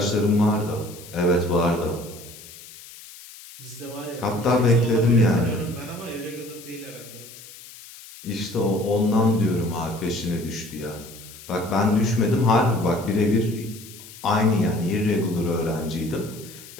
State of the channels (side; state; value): left; noise; hiss, 18 dB below the sound